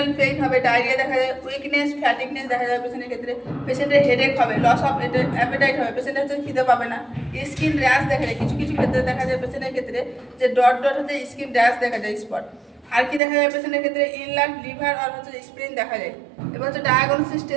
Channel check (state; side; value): drops out; left; at 13.2 s